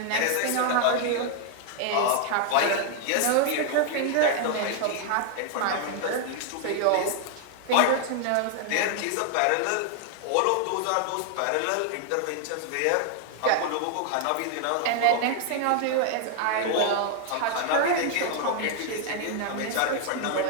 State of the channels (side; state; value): both; different; correlation 0.00